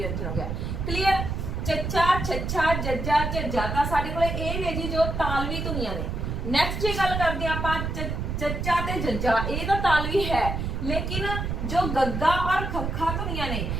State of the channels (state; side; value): noise; right; rumble, 3 dB below the sound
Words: ਹੋ ਗਿਆ। क्लियर? ਚੱਚਾ, ਛੱਛਾ, ਜੱਜਾ, ਝੱਜਾ ਤਾਂ ਸਾਡੇ ਕੋਲੇ ਇਹ ਨੇ ਜੀ ਜੋ ਤਾਲਵੀ ਧੁਨੀਆਂ ਨੇ। ਨੈਕਸਟ ਜੇ ਗੱਲ ਕਰਦੇ ਆ ਆਪਾਂ ਚੱਚਾ ਤੇ ਜੱਜਾ, ਇਹ ਤਾਂ ਤਾਲਵੀ ਹੈ, लेकिन जो गग्गा और खखा धुनियां ने